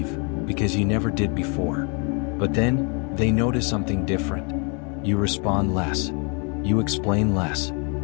because you never did before. But then, they notice something different. You respond less. You explain less.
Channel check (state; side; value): quieter; right; 35.4 dB